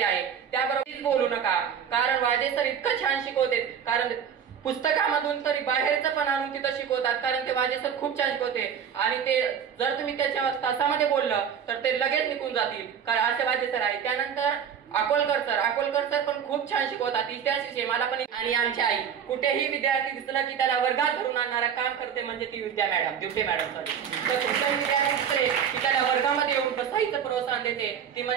आहे. त्याबरोबर बोलू नका, कारण वाजे सर इतकं छान शिकवते, कारण पुस्तकामधून तरी बाहेरचं पण आणून तिथं शिकवतात, कारण ते वाजे सर खूप छान शिकवते. आणि ते जर तुम्ही त्याच्या तासामध्ये बोललं तर ते लगेच निघून जातील, कारण असे वाजे सर आहे. त्यानंतर अकोलकर सर पण खूप छान शिकवतात, इतिहास विषय मला पण. आणि आमची आई, कुठेही विद्यार्थी दिसला की त्याला वर्गात धरून आणणारा काम करते म्हणजे ती ड्युटे मॅडम सर. तर कुठल्याही विद्यार्थी दिसले की त्याला वर्गामध्ये येऊन बसायचं प्रोत्साहन देते, ती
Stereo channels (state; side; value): quieter; left; 8.0 dB